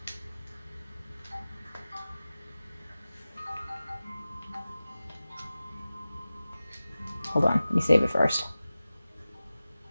Hold on, let me save it first.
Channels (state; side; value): inverted; both; correlation -0.96